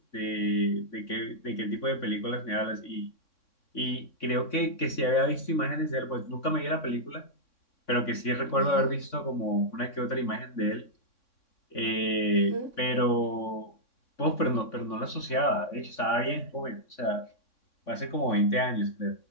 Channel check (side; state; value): right; late; 3.6 ms